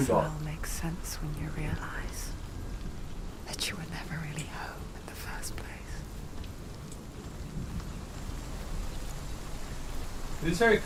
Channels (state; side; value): identical; both; correlation 1.00